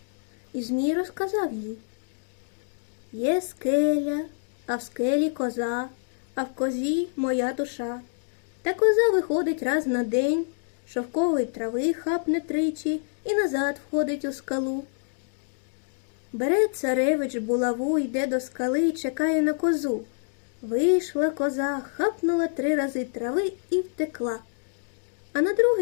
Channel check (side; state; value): right; silent; digital silence